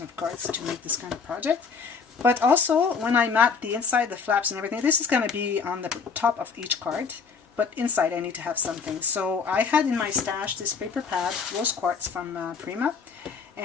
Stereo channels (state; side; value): quieter; right; 5.5 dB